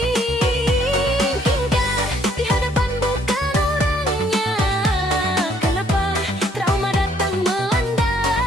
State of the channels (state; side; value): normal; both; correlation 0.65